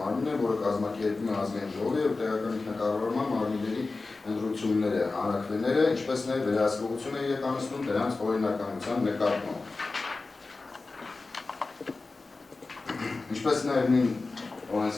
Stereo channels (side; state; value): right; quieter; 3.7 dB